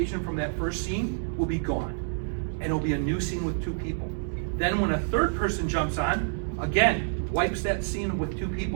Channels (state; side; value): silent; left; digital silence